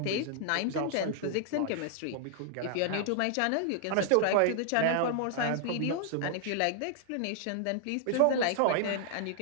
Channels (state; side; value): different; both; correlation 0.00